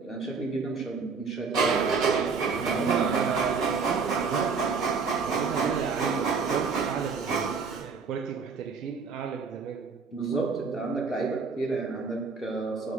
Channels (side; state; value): left; quieter; 5.0 dB